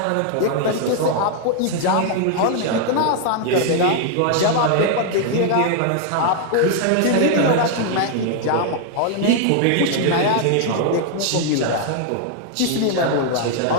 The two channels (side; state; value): both; different; correlation 0.00